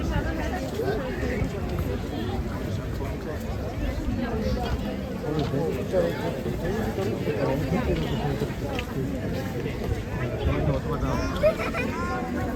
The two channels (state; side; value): identical; both; correlation 1.00